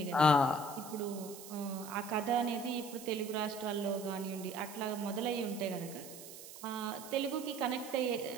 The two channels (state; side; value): noise; right; hiss, 14 dB below the sound